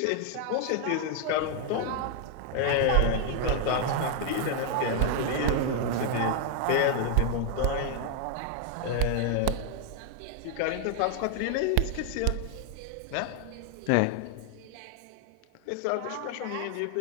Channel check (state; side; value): different; both; correlation 0.00